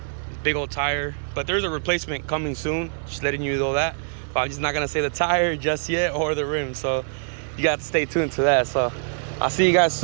big old tire. But there's a replacement coming soon, just letting you know that. But I'm just not gonna say the tire just yet, or the rim, so you got to stay tuned to that. So I'll see you guys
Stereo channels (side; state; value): left; silent; 58 dB below the other